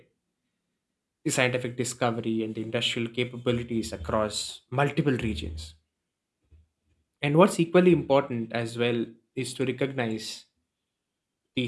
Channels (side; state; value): both; identical; correlation 1.00